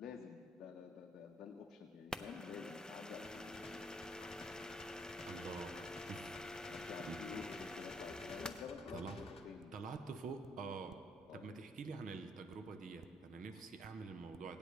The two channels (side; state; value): both; normal; correlation 0.69